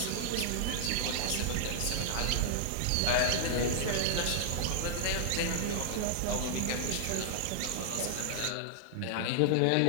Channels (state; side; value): different; both; correlation -0.01